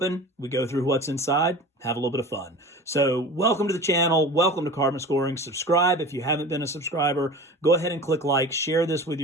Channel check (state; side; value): normal; both; correlation 0.36